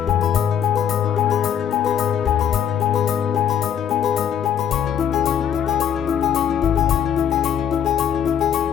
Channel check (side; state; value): right; quieter; 8.7 dB